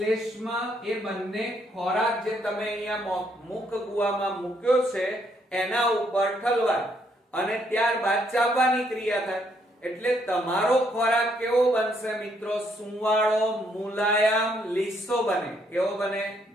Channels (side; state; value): both; normal; correlation 0.72